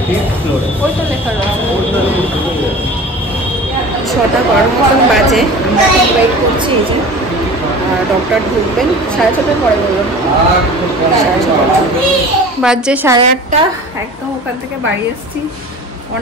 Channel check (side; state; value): both; normal; correlation 0.39